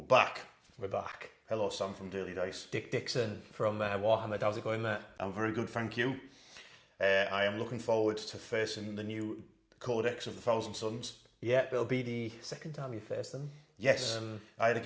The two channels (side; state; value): both; identical; correlation 1.00